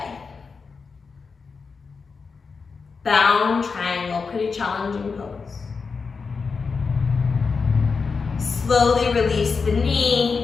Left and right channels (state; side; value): quieter; right; 5.0 dB